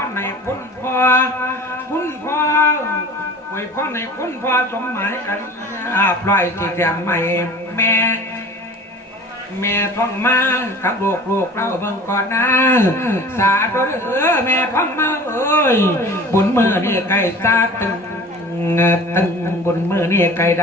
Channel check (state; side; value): normal; both; correlation 0.42